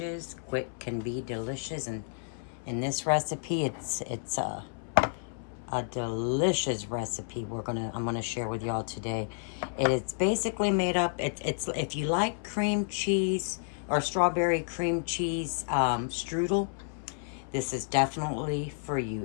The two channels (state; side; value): silent; right; 57 dB below the other